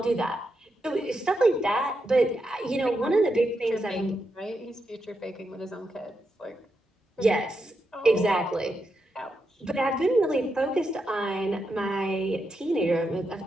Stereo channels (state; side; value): normal; both; correlation 0.85